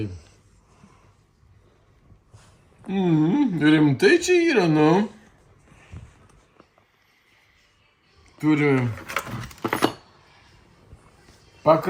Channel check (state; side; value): identical; both; correlation 1.00